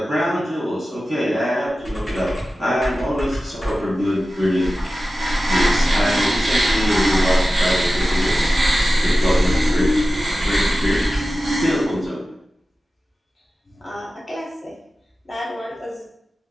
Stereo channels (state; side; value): normal; both; correlation 0.94